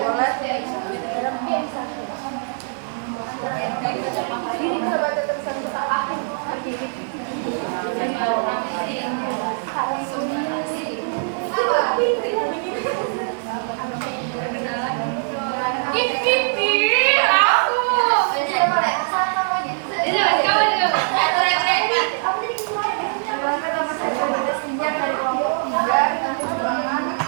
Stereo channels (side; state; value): left; silent; 64 dB below the other